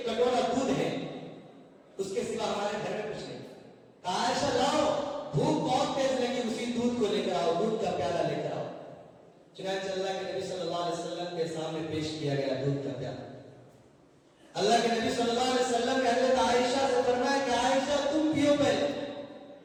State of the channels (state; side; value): identical; both; correlation 1.00